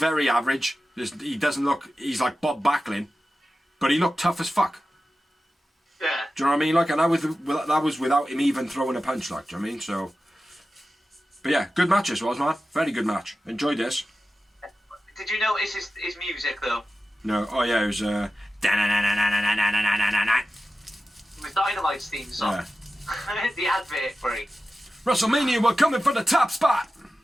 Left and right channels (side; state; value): both; normal; correlation 0.93